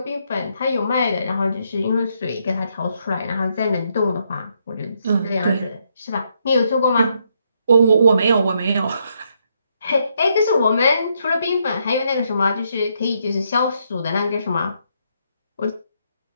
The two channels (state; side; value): inverted; both; correlation -0.76